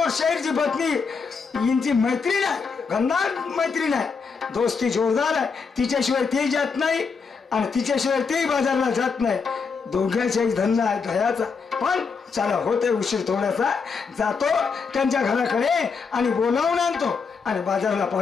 शेठची पत्नी यांची मैत्रीण आहे, गंधार मैत्रीण आहे, दोस्ती जोरदार आहे. तिच्याशिवाय ते जात नाही आणि तिच्याशिवाय तेही बाजारला जात नाही. दोघांचाही धंदा आहे दह्याचा. पण चला, होते उशीर थोडासा, जातो त्यांच्या घराकडे आणि बोलावून आणतो आणि बाजारला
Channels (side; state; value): right; quieter; 5.3 dB